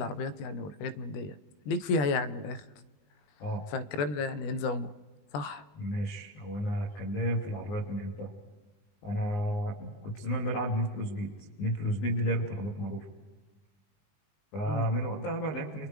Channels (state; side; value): late; right; 20 ms